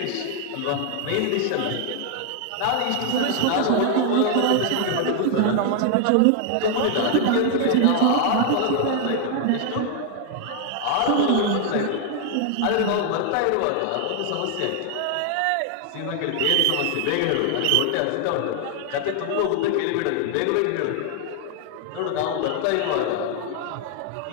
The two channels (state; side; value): different; both; correlation 0.00